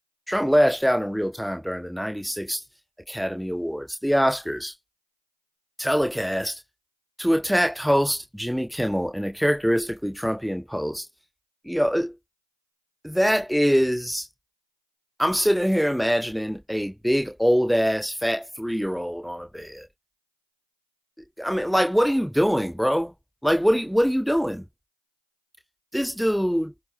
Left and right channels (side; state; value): both; identical; correlation 1.00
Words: Trump lashed out in real time during the 96th Academy Awards, the Oscars, telecast to attacked host Jimmy Kimmel in a characteristically Trumpian post. You know, that is I'm sitting here imagining a big old ass fat 3-year-old on a bed. I mean, like, what are you doing, bro? Like, what are you doing? This dude